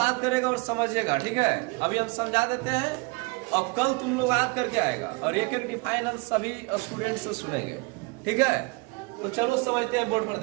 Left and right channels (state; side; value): quieter; left; 28.3 dB